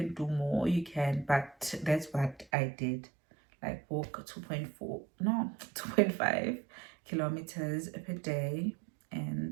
do more, you can, but that's what I did. Like walk 2.4, no, 2.5 kilometers per day.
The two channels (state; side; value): drops out; left; at 2.5 s